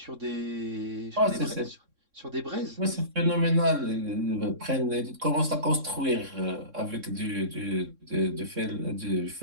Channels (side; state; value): left; late; 3.6 ms